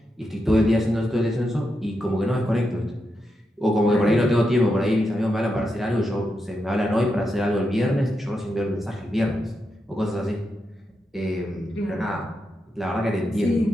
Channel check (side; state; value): both; normal; correlation 0.86